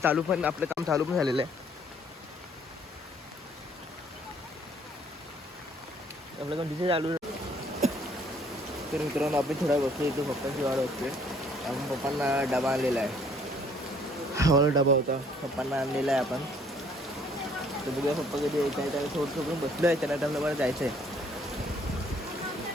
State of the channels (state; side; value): normal; both; correlation 0.61